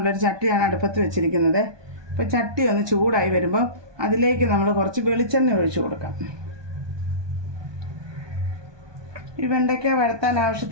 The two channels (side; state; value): left; late; 1.2 ms